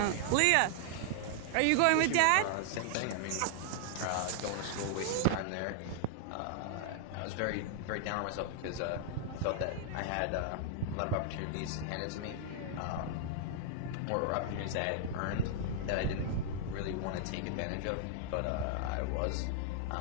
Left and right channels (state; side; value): different; both; correlation -0.01